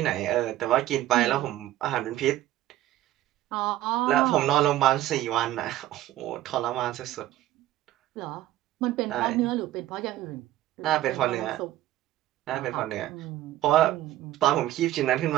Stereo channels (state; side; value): quieter; left; 14.3 dB